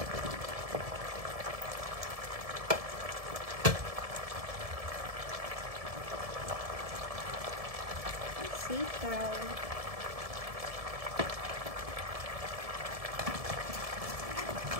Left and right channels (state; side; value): late; left; 1.7 ms